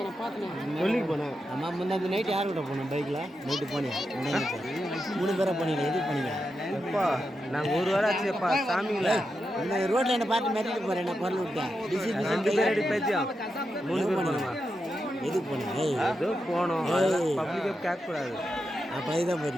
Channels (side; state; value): both; normal; correlation 0.87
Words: நான் பார்த்தேன். சொல்லிக்கு போனேன். அம்மா முன்னாடி நைட்டு யார் கூட போனோம் பைக்கில்? நைட்டு போனேன். 3 பேரை போனீங்களா? எதுக்கு போனீங்க? எப்பா நாங்கள் ஒரு வாரம் ஆச்சுப்பா சாமிங்களா. இந்த ரோட்டில் என்ன பார்த்து மிரட்டிட்டு போகிறேன். என்ன பொருள் விட்டேன். 2 பேர் அடி பேச்சியா 3 பேர் போனோமா? எதுக்கு போனேன்? ஏதோ போனோம். பப்ளிக்காக கேட்கக்கூடாது. அப்போ இதுதான்